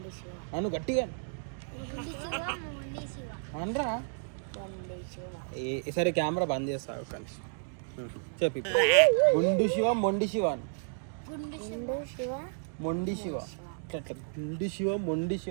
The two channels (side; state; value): left; silent; digital silence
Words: అను గట్టిగా అనరా. సరే కెమెరా బంద్ చేస్తా కానీ చెప్పి. గుండు శివ మొండి శివ అని. మొండి శివ అట్లా. గుండు శివ మొండి